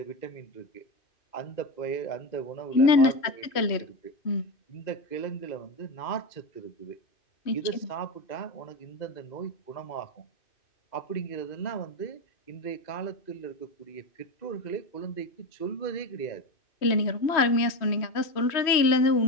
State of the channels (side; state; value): right; late; 3.1 ms